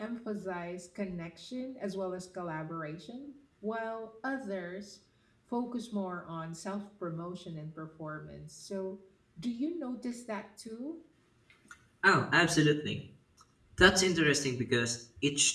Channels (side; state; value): both; identical; correlation 1.00